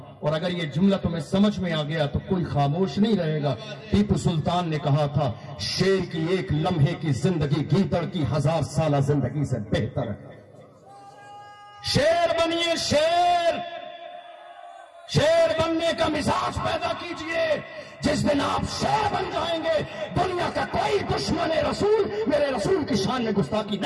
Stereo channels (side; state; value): both; identical; correlation 1.00